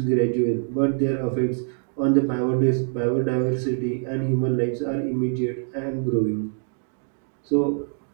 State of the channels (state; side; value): silent; left; 62 dB below the other